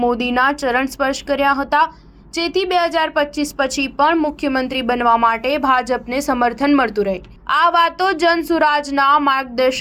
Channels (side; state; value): both; identical; correlation 1.00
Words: મોદીના ચરણ સ્પર્શ કર્યા હતા, જેથી 2025 પછી પણ મુખ્યમંત્રી બનવા માટે ભાજપને સમર્થન મળતું રહે। આ વાતો જનસુરાજના